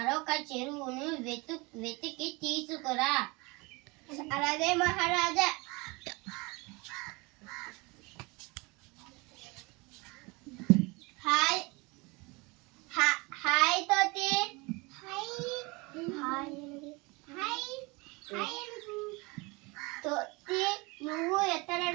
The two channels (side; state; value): left; quieter; 26.2 dB